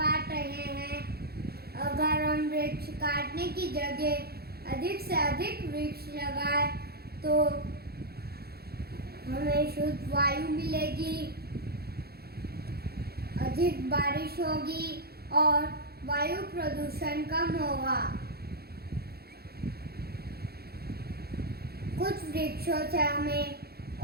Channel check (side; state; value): left; late; 0.46 ms